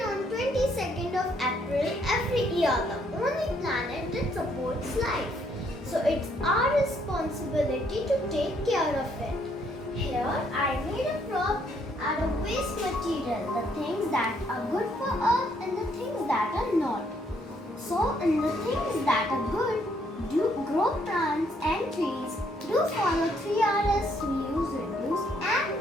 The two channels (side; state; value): both; normal; correlation 0.70